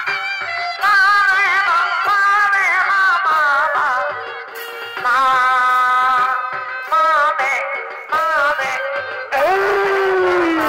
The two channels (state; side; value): identical; both; correlation 1.00